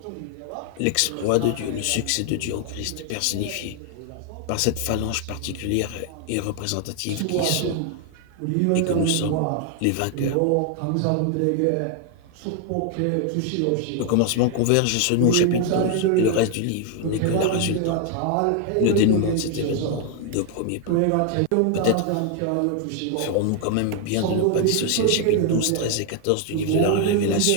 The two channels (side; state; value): both; different; correlation 0.00